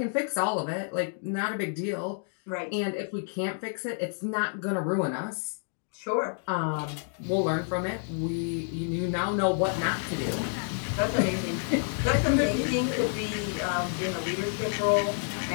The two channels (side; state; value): right; silent; 58 dB below the other